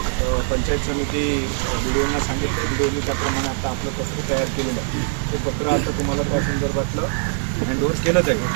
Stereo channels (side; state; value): left; silent; 61 dB below the other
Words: पंचायत समिती BDOना सांगितलं, BDOनी त्याप्रमाणे आता आपलं पत्र तयार केलेलं आहे। ते पत्र आता तुम्हाला त्या संदर्भातलं हँडओव्हर केलं जाईल,